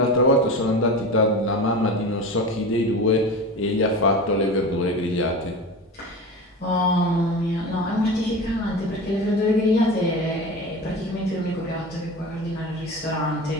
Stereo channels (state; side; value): normal; both; correlation 0.30